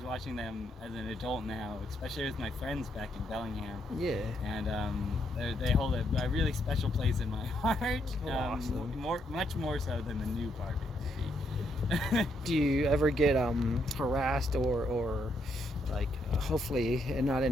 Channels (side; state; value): both; normal; correlation 0.76